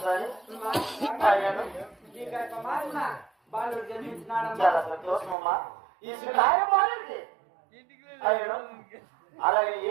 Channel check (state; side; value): drops out; left; at 5.4 s